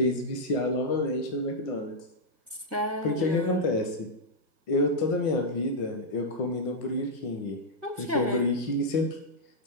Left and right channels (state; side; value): late; left; 1.5 ms